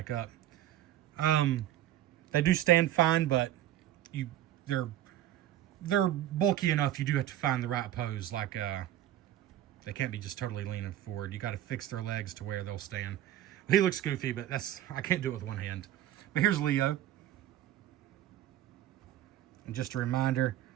up. They do stand fine, but they're bulky enough. You do have to find the right pose. Like they can't be just totally leaning forward. You got to fix their legs to where they'll stand. He looks goofy, but I can't do it with one hand. But here's Leo. And just a reminder,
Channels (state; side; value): quieter; left; 12.7 dB